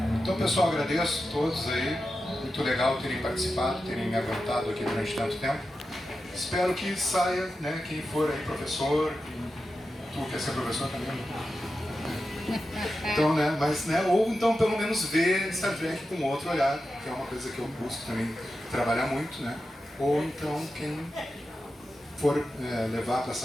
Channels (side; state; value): both; normal; correlation 0.91